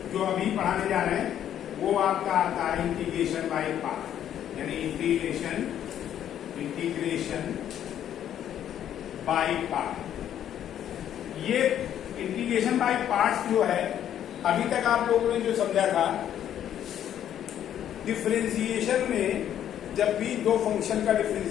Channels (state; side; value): quieter; right; 10.4 dB